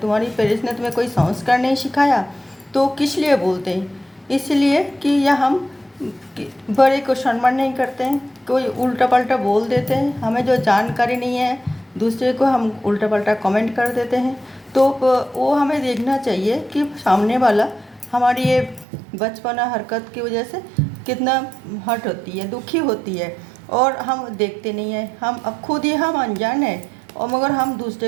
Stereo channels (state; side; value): drops out; left; at 18.9 s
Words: पेरेंट्स ने तुम्हें कोई संस्कार नहीं सिखाया। तो किस लिए बोलते हैं? इसलिए कि या हम बड़े को सम्मान नहीं करते हैं, कोई उल्टा पल्टा बोल देते हैं, हमें जो जानकारी नहीं है दूसरे को हम उल्टा पल्टा कमेंट कर देते हैं। तो वो हमें देखना चाहिए कि सामने वाला हमारी ये बचपना हरकत की वजह से कितना हर्ट होती है, दुखी होती है, और हम देखते नहीं हैं। हम अब खुद ही हम अनजान हैं और मगर हम